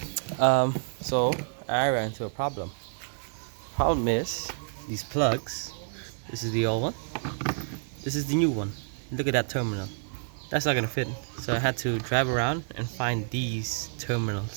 So I ran into a problem. Problem is these plugs. This is the old one. This is the new one. Look at that terminal. That's not gonna fit. So I had to drive around and find these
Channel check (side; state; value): left; silent; digital silence